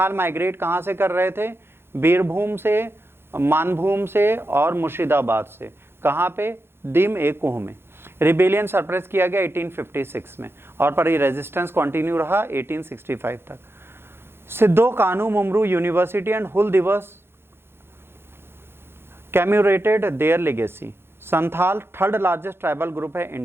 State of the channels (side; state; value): left; late; 0.11 ms